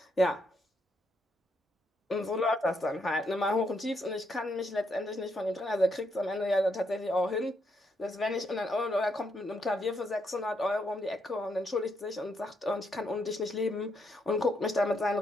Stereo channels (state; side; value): normal; both; correlation 0.77